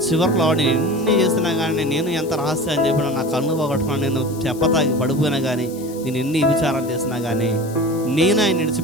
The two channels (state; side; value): noise; left; hiss, 19 dB below the sound